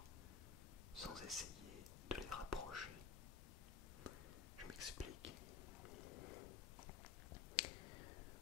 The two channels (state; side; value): quieter; right; 6.3 dB